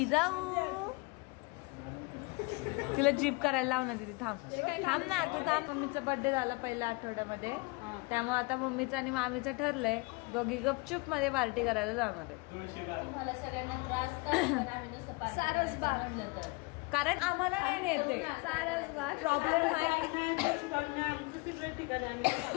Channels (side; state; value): right; quieter; 27.2 dB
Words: तिला जीप करायला लाव ना दीदी. थांब थांब ना तू थांब. मम्मीचा बर्थडे झाला पहिल्या आठवड्यामध्ये, त्यामुळे आता मम्मीचं आणि मामीचं ठरलंय दोघी गपचूप मध्ये पार्टी करायला जाणार आहे. तुम्हाला सगळ्यांना त्रास का? आम्ही नुसतं सारसबाग म्हणलं तर. कारण आम्हाला नाही नेते. सारसबाग प्रॉब्लेम आहे